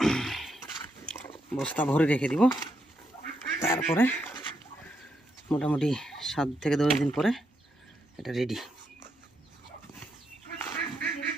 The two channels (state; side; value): normal; both; correlation 0.80